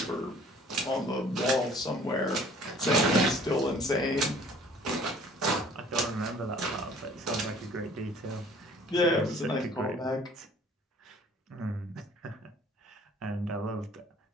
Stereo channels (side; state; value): both; normal; correlation 0.53